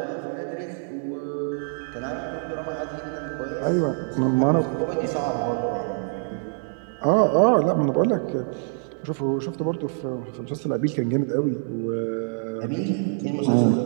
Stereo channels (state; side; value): silent; left; 62 dB below the other